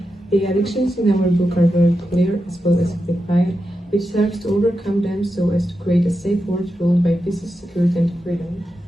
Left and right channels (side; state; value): both; normal; correlation 0.89